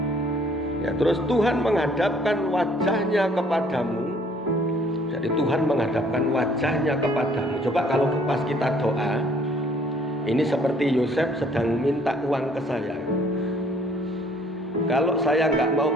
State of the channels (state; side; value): normal; both; correlation 0.59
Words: Ya, terus Tuhan menghadapkan wajahnya kepadamu. Jadi Tuhan menghadapkan wajahnya kepadamu. Coba kalau pas kita doa, ini seperti Yosef sedang minta uang ke saya. Kalau saya nggak mau